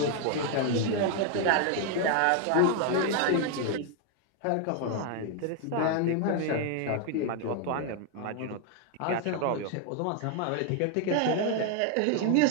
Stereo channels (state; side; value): different; both; correlation 0.01